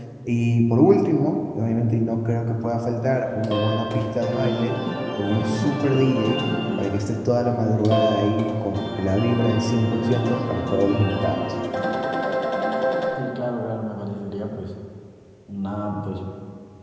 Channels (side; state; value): both; identical; correlation 1.00